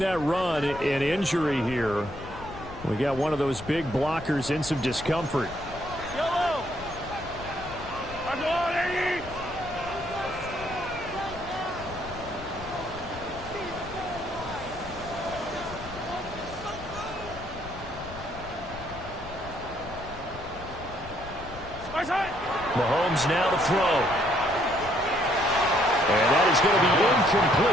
that run, an injury here. We got one of those big blockers in some discomfort. Yellow. Mahomes now to throw. And that is going to be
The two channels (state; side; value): noise; left; rumble, 14 dB below the sound